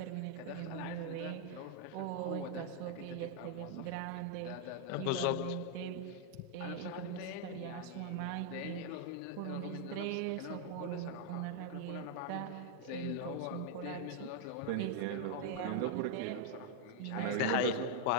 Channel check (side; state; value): both; different; correlation 0.00